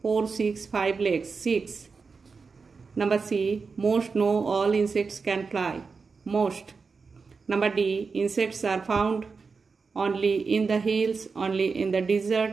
4, 6, 5 legs, 6. Number C, most, no, all insects can fly, most. Number D, insects are found only in the hills, only in the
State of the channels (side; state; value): left; quieter; 4.8 dB